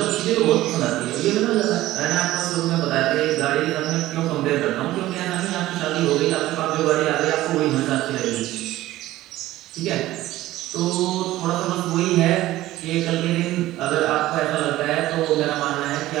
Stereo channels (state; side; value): quieter; left; 15.9 dB